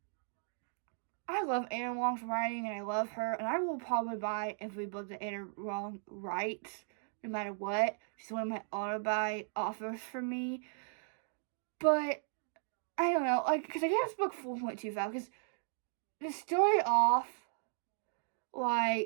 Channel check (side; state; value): left; silent; digital silence